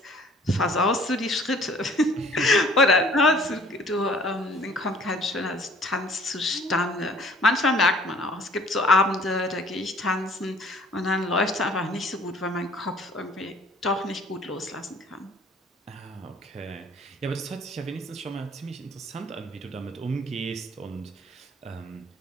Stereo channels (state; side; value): normal; both; correlation 0.54